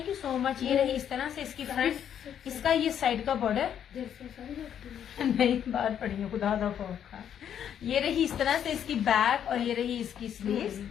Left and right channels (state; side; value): quieter; right; 9.2 dB